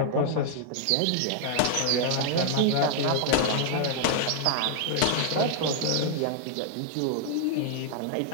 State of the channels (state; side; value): different; both; correlation -0.01